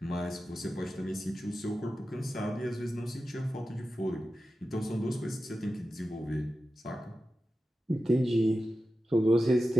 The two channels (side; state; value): both; normal; correlation 0.93